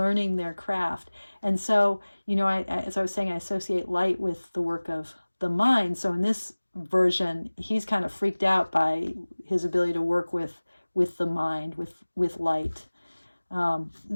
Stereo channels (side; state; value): both; inverted; correlation -1.00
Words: their craft. And so, as I was saying, I associate light with the work of the mind. So in this version, he's kind of freaked out by his ability to work with the mind, with light.